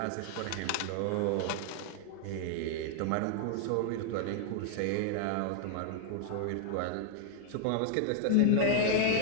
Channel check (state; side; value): different; both; correlation -0.01